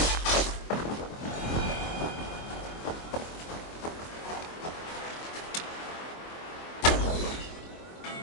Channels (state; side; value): late; right; 24 ms